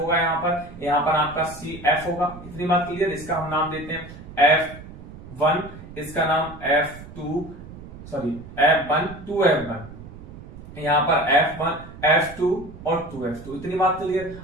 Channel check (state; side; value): noise; right; rumble, 15 dB below the sound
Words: यहाँ पर आपका सी f होगा। इतनी बात क्लियर। इसका हम नाम देते हैं f1, इसका नाम f2, सॉरी f1 2f1, यहाँ पर f1 f2 और 2f2। इतनी बात क्लियर।